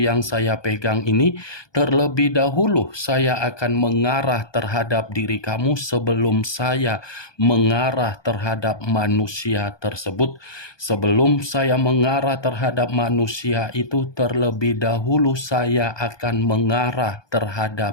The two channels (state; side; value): late; right; 1.2 ms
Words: saya pegang ini, terlebih dahulu saya akan mengarah terhadap diri kamu sebelum saya mengarah terhadap manusia tersebut. Sebelum saya mengarah terhadap manusia itu, terlebih dahulu saya akan mengarah